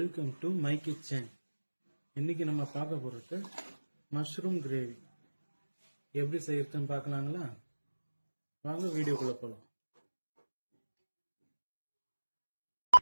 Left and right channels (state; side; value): inverted; both; correlation -1.00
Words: to my kitchen. இன்னைக்கு நம்ம பார்க்க போறது மஷ்ரூம் கிரேவி. எப்படி செய்யறதுன்னு பார்க்கலாங்களா? வாங்க வீடியோக்குள்ள போலாம்.